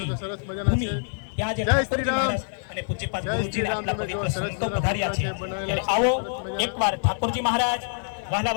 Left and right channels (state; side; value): silent; right; 55 dB below the other